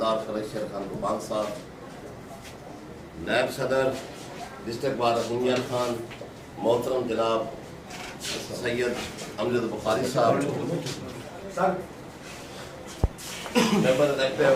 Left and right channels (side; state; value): both; identical; correlation 1.00